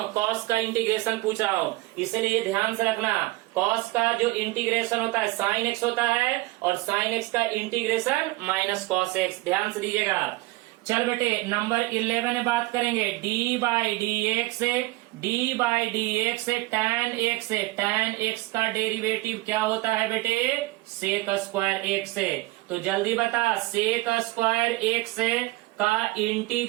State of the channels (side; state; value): left; quieter; 20.7 dB